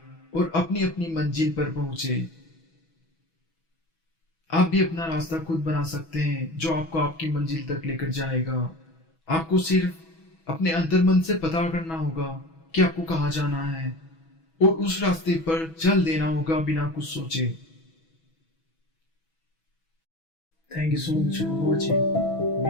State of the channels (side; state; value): right; late; 6.1 ms